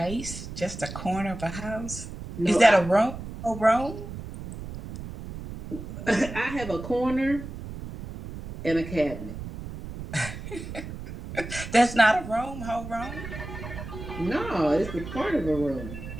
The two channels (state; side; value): noise; right; rumble, 10 dB below the sound